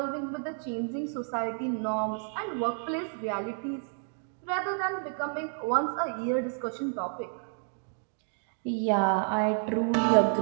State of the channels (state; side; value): silent; left; 58 dB below the other